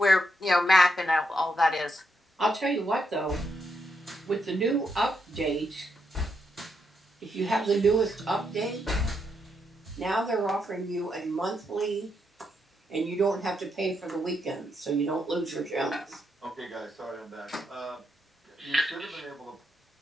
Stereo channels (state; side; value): normal; both; correlation 0.80